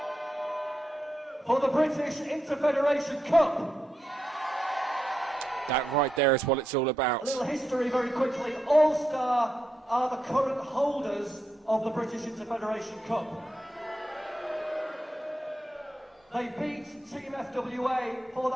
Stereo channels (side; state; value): both; normal; correlation 0.84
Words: for the British Interfederation Cup. That right there is what it's all about. A little history very quickly. All-Star are the current holders of the British Interfederation Cup. They beat Team FWA for